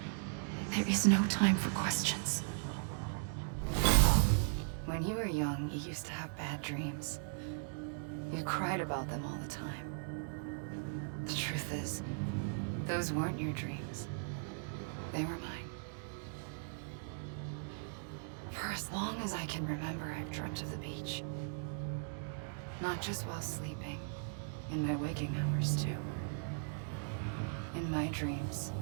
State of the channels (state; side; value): silent; left; digital silence